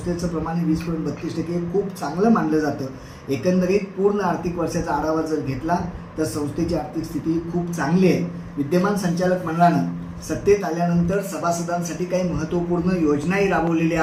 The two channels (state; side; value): identical; both; correlation 1.00